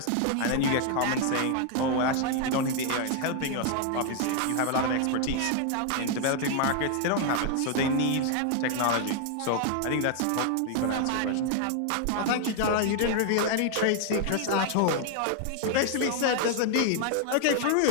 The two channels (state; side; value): different; both; correlation 0.00